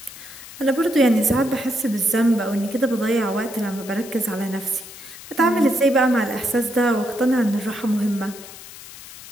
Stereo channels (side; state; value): left; noise; hiss, 16 dB below the sound